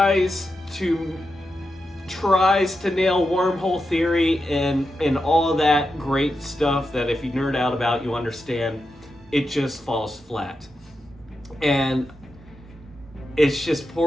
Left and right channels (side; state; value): both; normal; correlation 0.88